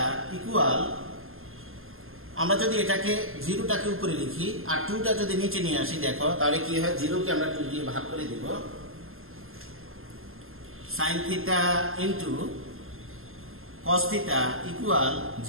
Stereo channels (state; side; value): late; left; 0.61 ms